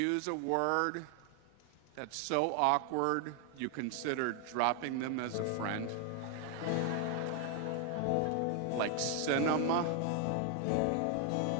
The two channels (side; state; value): both; different; correlation 0.00